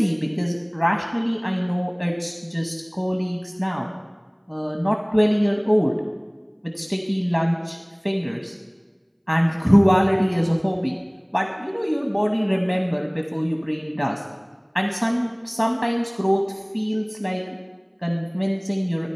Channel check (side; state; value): both; identical; correlation 1.00